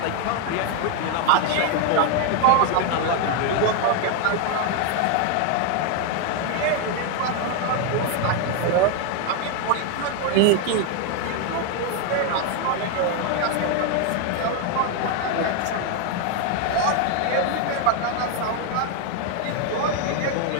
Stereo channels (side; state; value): both; different; correlation 0.01